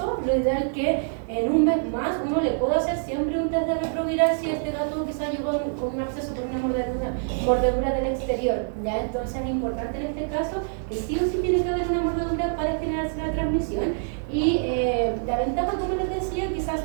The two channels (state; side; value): silent; left; 61 dB below the other